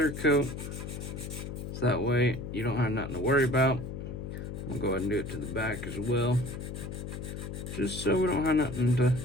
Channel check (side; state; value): left; noise; hum, 7 dB below the sound